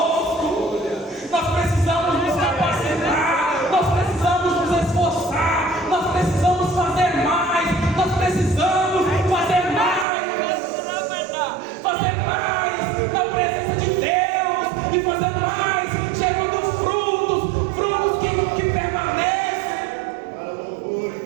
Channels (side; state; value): left; drops out; at 10.1 s